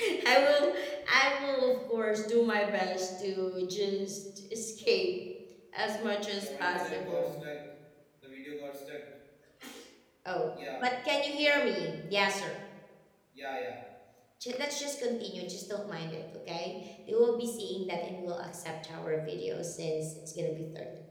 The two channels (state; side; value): identical; both; correlation 1.00